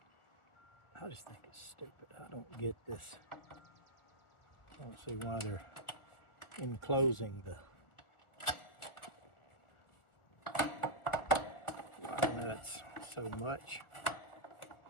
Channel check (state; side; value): late; right; 1.4 ms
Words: think is stupid. I don't get this. I don't see why they're enclosing the wire nuts so much.